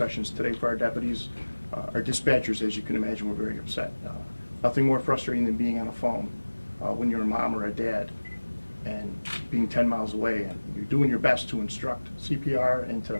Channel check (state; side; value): inverted; both; correlation -1.00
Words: today for our deputies. Our dispatchers, as you can imagine, were very upset. Nothing more frustrating than being on a phone when you're a mom or a dad and being 10 miles away, and you're doing your best to instruct CPR and to